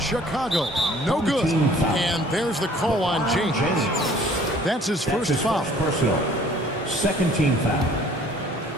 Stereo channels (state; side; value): normal; both; correlation 0.54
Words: No good. And there's the call on James. That's his first foul. Personal. Second team foul.